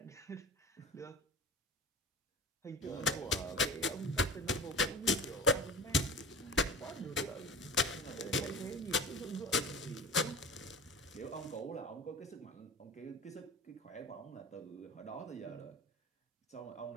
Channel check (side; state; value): both; normal; correlation 0.35